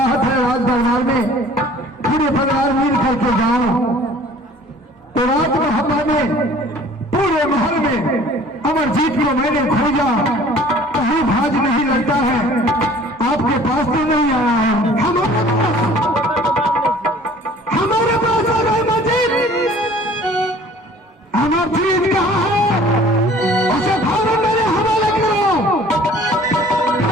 है राज दरबार में, पूरे परिवार मिल करके जाओ। तो रात मोहब्बत में पूरे महल में अमरजीत को मैंने खोजा, कहीं भाज नहीं लगता है, आपके पास तो नहीं आया है। हमारे पास आ गए अमरजीत। अमरजीत कहाँ है? उसे फौरन मेरे हवाले करो।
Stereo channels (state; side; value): normal; both; correlation 0.51